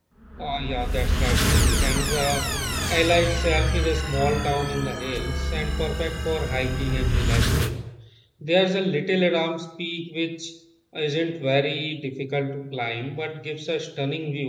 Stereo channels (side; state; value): both; identical; correlation 1.00